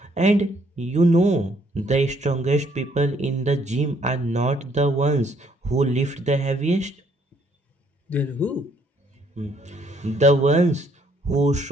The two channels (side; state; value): both; normal; correlation 0.67